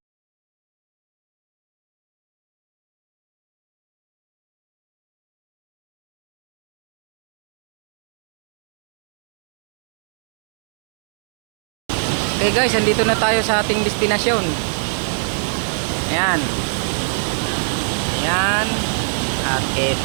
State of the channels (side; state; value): left; silent; digital silence